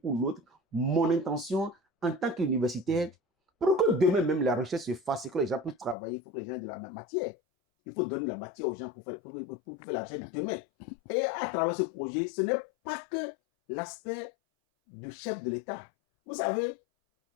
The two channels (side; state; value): right; drops out; at 6.0 s